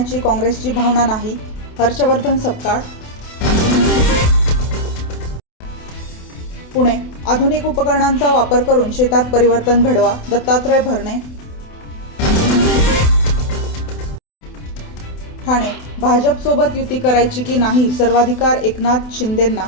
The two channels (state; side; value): late; right; 28 ms